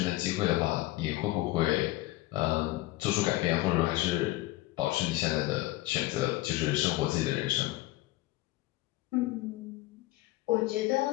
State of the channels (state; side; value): quieter; right; 18.1 dB